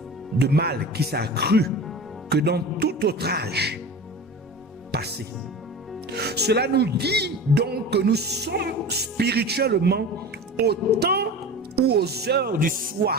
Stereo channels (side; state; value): both; normal; correlation 0.33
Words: de mal qui s'est accru que dans tout autre âge passé. Cela nous dit donc que nous sommes spirituellement au temps ou aux heures du